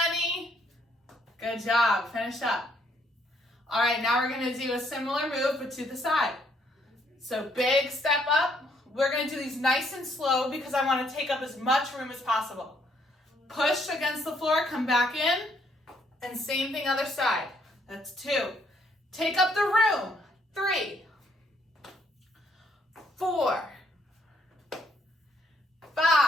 Good job. Finish up. All right, now we're going to do a similar move, but to the side. So big step up. We're going to do these nice and slow because I want to take up as much room as possible. Push against the floor, come back in, and same thing other side. That's 2. Take up the room. 3, 4,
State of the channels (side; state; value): both; normal; correlation 0.70